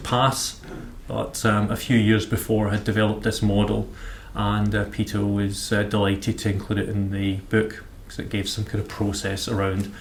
But a few years before I had developed this model, and Peter was delighted to include it in the book because it gave some kind of process around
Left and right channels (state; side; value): identical; both; correlation 1.00